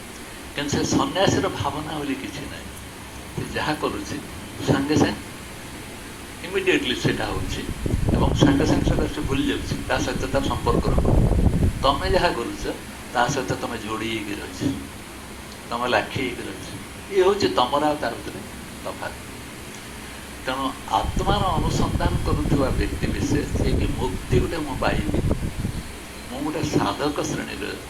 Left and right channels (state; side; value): identical; both; correlation 1.00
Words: କିନ୍ତୁ ସେ ସନ୍ନ୍ୟାସୀର ଭାବନା ବୋଲି କିଛି ନାହିଁ। ସେ ଯାହା କରୁଛି ସାଙ୍ଗେ ସାଙ୍ଗେ ଇମିଡ଼ିଏଟଲି ସେଇଟା ହେଉଛି ଏବଂ ସାଙ୍ଗେ ସାଙ୍ଗେ ସେଇଟା ସେ ଭୁଲି ଯାଉଛି, ତା ସହିତ ତାର ସମ୍ପର୍କ ରଖୁନି। ତମେ ଯାହା କରୁଛ ତା ସହିତ ତମେ ଯୋଡ଼ି ହେଇକି ରହିଛ, ତମେ ଲାଖି ହେଇକି ରହିଛ। ଇଏ ହେଉଛି ତମର ଆଉ ତାର ଭିତରେ ତଫାତ୍। ତେଣୁ ଆତ୍ମାର ଅନୁସନ୍ଧାନ କରୁଥିବା ବ୍ୟକ୍ତି ବିଶେଷ ଯିଏକି ମୁକ୍ତି ଗୋଟେ ମୁଁ ପାଇବି, ମୁଁ ଗୋଟେ ସାଧକ ଶ୍ରେଣୀରେ